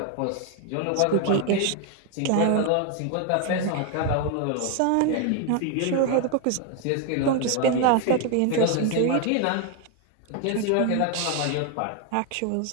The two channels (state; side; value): different; both; correlation 0.01